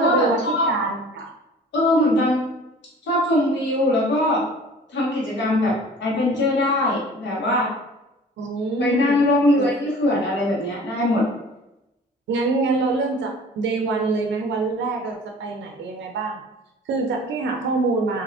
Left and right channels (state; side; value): normal; both; correlation 0.46